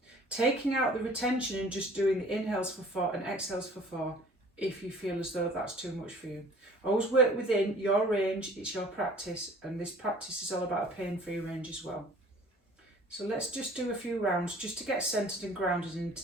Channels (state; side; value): normal; both; correlation 0.50